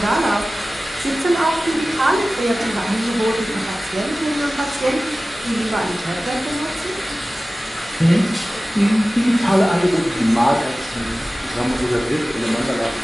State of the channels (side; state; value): both; normal; correlation 0.96